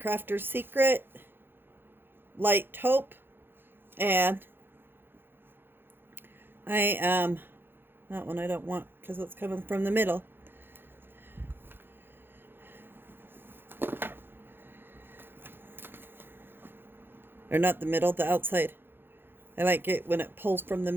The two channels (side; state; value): left; late; 0.10 ms